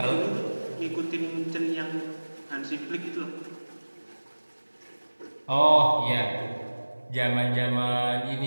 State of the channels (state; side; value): inverted; both; correlation -1.00